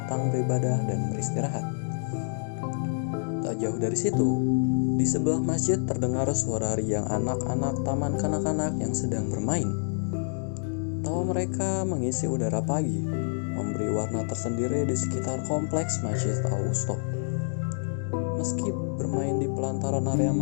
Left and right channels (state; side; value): silent; right; digital silence